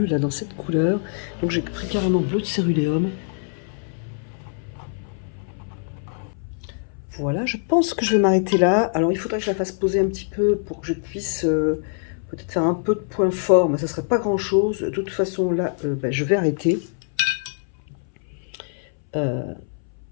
là dans cette couleur. Donc j'ai pris carrément bleu de céruléum. Voilà, je pense que je vais m'arrêter là. Alors il faudrait que je la fasse poser un petit peu pour que je puisse peut-être faire un peu de point fort, mais ça serait pas grand chose. De toute façon là, ben, je vais arrêter. Parce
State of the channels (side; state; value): right; silent; 61 dB below the other